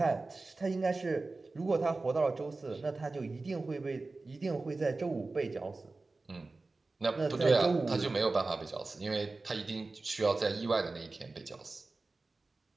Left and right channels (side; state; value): left; quieter; 3.5 dB